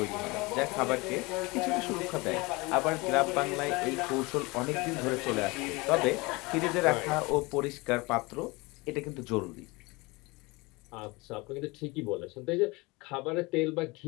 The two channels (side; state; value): right; quieter; 24.4 dB